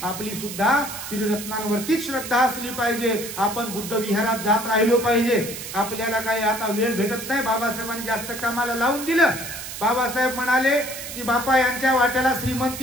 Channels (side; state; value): right; noise; hiss, 9 dB below the sound